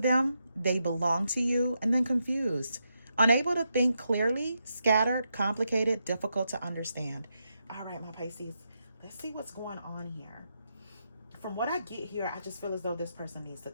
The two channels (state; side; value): inverted; both; correlation -0.84